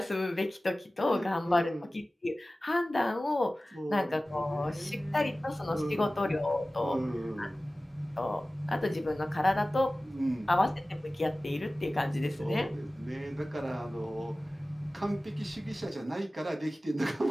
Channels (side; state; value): both; normal; correlation 0.97